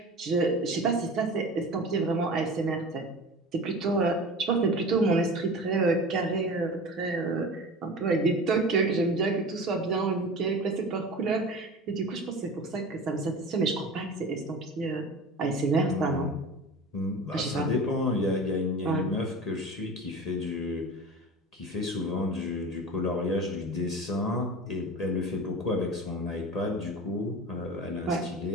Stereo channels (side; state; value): both; normal; correlation 0.34